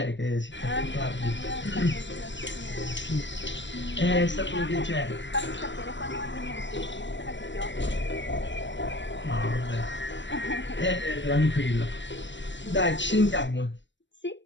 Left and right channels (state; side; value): late; right; 0.53 ms